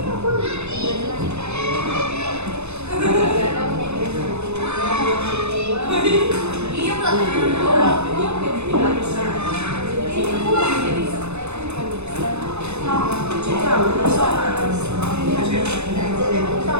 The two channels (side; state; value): left; late; 0.81 ms